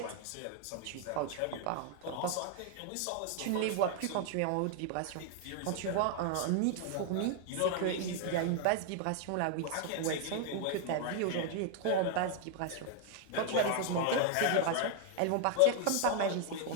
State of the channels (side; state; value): both; different; correlation 0.00